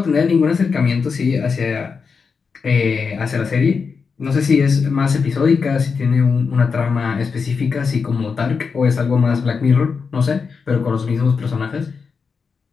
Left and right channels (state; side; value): quieter; right; 5.4 dB